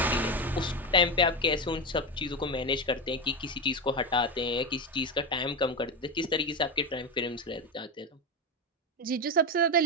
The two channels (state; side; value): normal; both; correlation 0.14